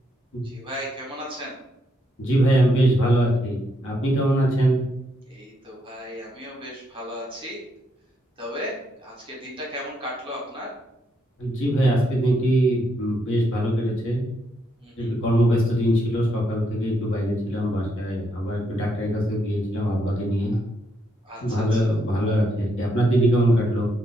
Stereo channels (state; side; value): normal; both; correlation 0.77